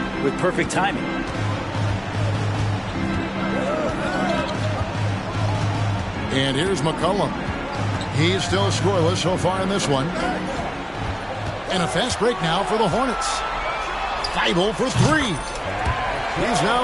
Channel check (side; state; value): both; identical; correlation 1.00